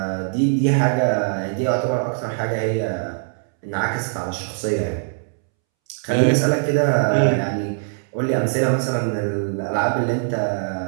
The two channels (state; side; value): silent; left; 65 dB below the other